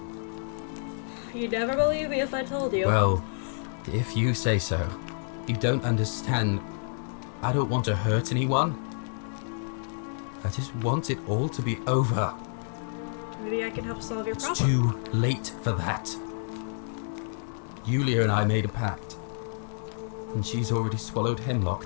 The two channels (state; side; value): silent; right; digital silence